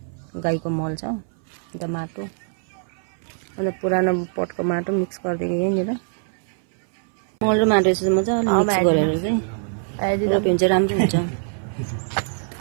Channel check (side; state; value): left; silent; 63 dB below the other